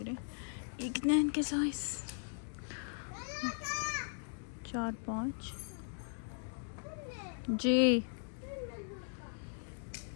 रहे। ये कितना है इनके साइज? 4 5 जी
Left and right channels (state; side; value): silent; right; digital silence